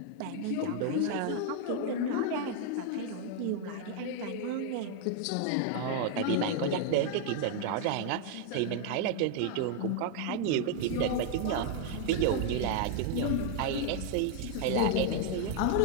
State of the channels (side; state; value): both; different; correlation 0.00